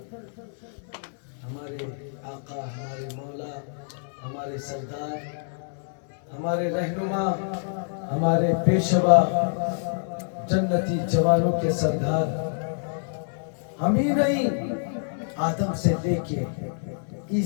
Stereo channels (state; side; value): silent; right; digital silence